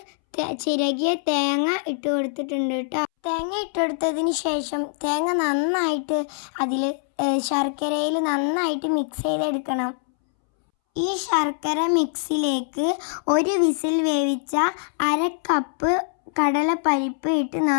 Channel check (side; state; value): right; silent; 63 dB below the other